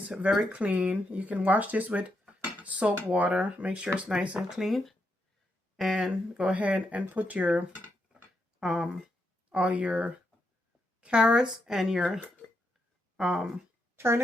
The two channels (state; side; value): normal; both; correlation 0.81